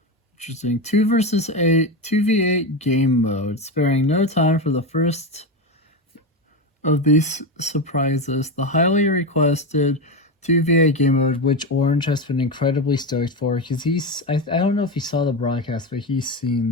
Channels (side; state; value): both; normal; correlation 0.16